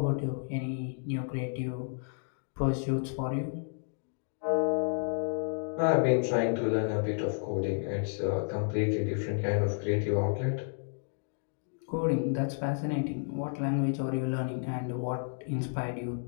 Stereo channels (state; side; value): silent; right; digital silence